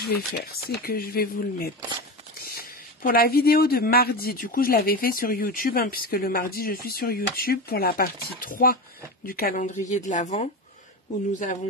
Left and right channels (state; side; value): normal; both; correlation 0.22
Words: vais faire, c'est que je vais vous le mettre. Pour la vidéo de mardi, du coup je l'avais fait sur YouTube, hein, puisque le mardi je suis sur YouTube pour la partie 3 du calendrier de l'Avent, où nous